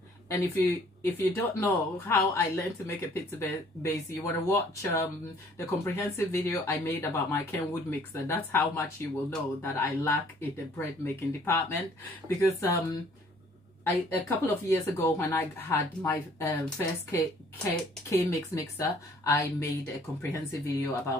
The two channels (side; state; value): both; normal; correlation 0.58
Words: And if you don't know how I learned to make a pizza base, you want to watch the comprehensive video I made about my Kenwood mixer. That's how much you will know that I lack in the bread making department. Because a couple of years ago when I had my first K-Mix mixer, I made a comprehensive video